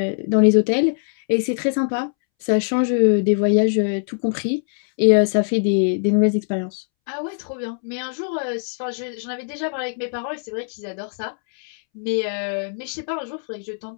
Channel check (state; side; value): silent; right; 64 dB below the other